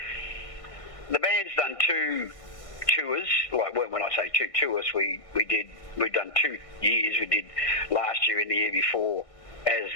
the band's done 2 tours. Like, when I say 2 tours, we've done 2 years. We did last year and the year before as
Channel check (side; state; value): right; late; 1.6 ms